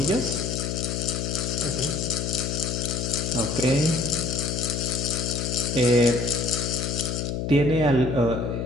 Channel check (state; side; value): noise; left; hum, 2 dB below the sound